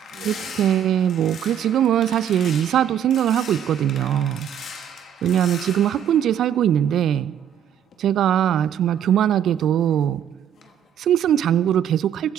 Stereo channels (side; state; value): left; quieter; 9.6 dB